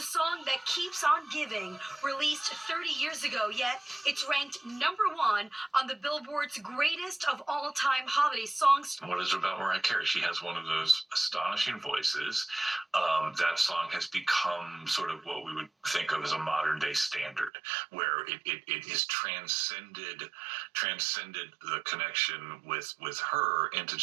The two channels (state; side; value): drops out; left; at 17.5 s